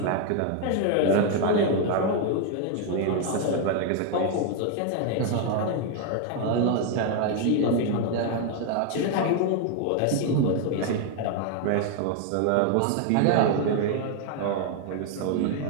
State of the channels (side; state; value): both; different; correlation 0.00